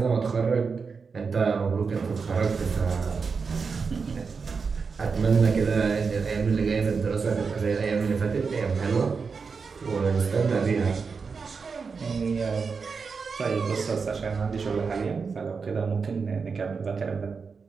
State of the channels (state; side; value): quieter; left; 5.2 dB